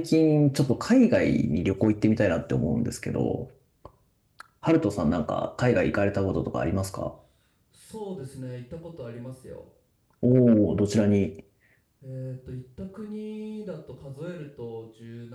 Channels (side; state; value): both; identical; correlation 1.00